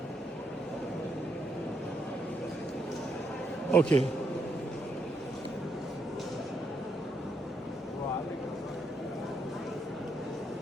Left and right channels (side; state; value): both; normal; correlation 0.77